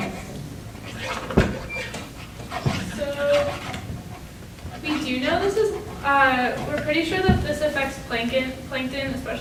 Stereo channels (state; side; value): identical; both; correlation 1.00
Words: So we do know this is, we're pretty sure that this affects plankton,